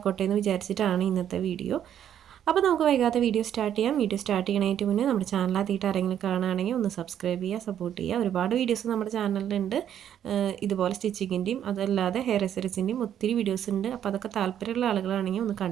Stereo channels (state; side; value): quieter; left; 9.9 dB